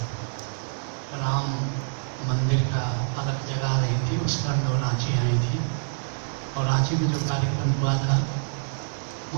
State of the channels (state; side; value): silent; left; digital silence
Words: राम मंदिर का अलग जगह रही थी, उस पर वो रांची आई थी और रांची में जो कार्यक्रम हुआ था